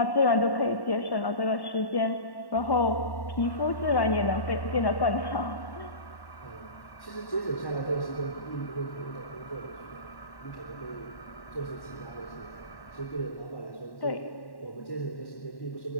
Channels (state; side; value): late; right; 1.1 ms